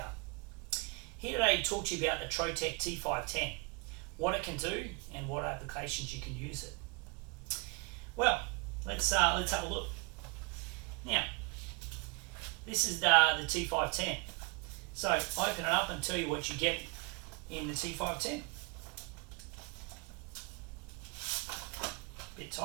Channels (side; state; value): left; quieter; 29.2 dB